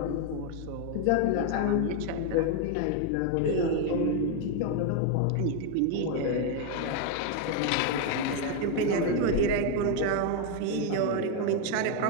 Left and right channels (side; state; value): both; different; correlation 0.01